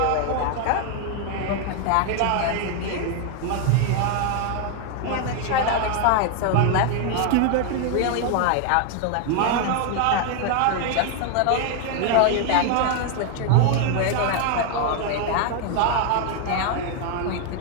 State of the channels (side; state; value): both; different; correlation 0.01